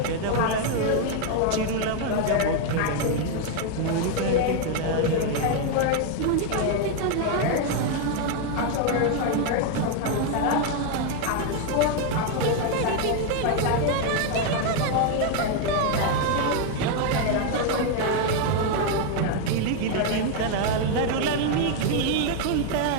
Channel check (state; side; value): different; both; correlation 0.01